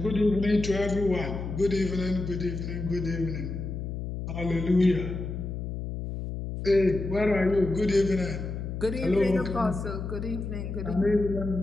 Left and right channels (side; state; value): left; noise; hum, 5 dB below the sound